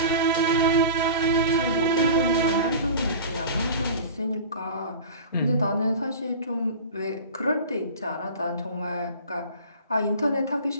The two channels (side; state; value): both; inverted; correlation -0.37